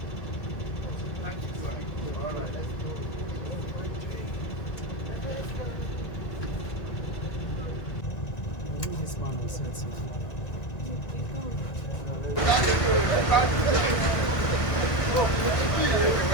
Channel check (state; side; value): late; right; 1.9 ms